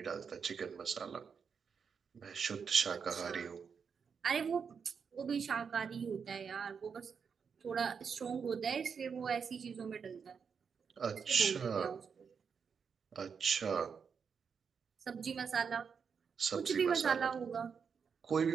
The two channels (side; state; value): left; quieter; 6.3 dB